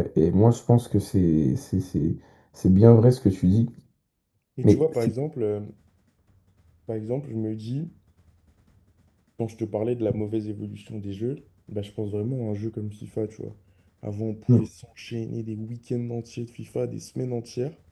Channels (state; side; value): identical; both; correlation 1.00